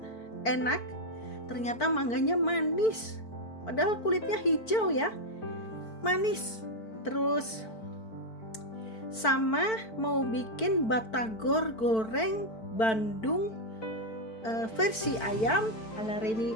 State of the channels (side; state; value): right; late; 4.5 ms